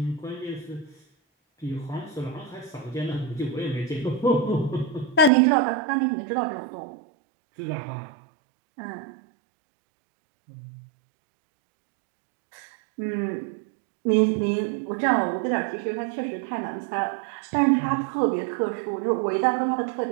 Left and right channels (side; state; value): left; drops out; at 5.3 s